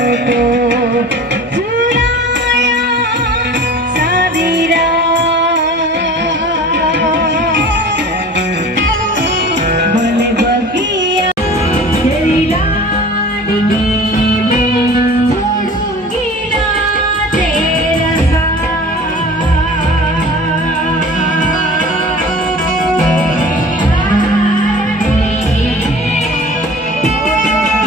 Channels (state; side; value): normal; both; correlation 0.41